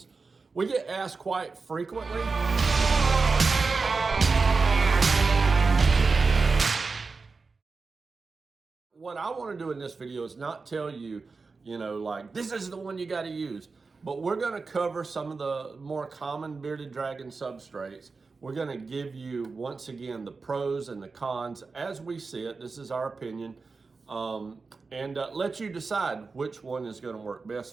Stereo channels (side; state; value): left; quieter; 4.3 dB